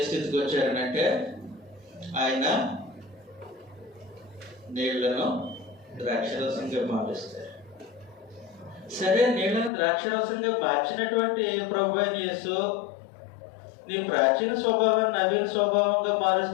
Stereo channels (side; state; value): right; drops out; at 9.7 s